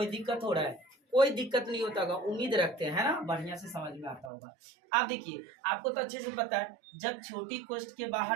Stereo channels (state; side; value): drops out; left; at 4.3 s